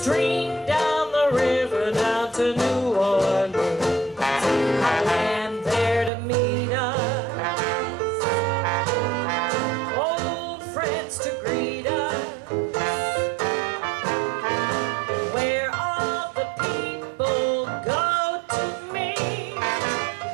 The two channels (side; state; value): left; drops out; at 6.1 s